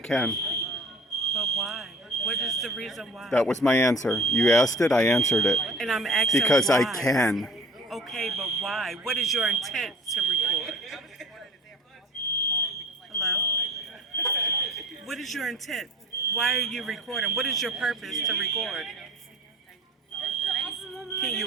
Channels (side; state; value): both; normal; correlation 0.43